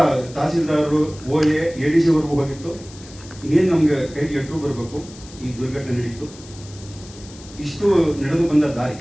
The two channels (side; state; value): left; noise; hiss, 20 dB below the sound